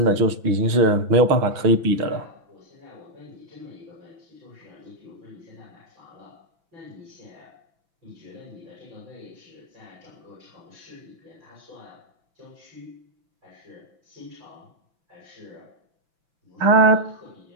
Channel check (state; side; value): late; left; 6.0 ms